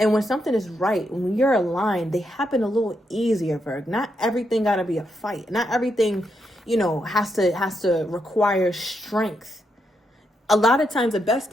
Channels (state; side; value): normal; both; correlation 0.81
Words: when something is right, when you're aligned, they happen a little easier, Virg. Not everything got to be a fight. Not everything, you know, has to require strength. A lot of times the best